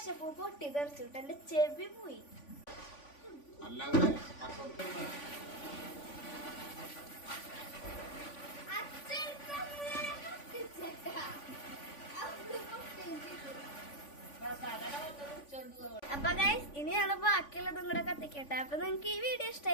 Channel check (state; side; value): late; right; 3.5 ms